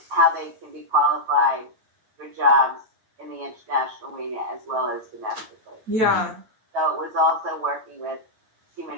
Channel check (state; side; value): late; left; 9.1 ms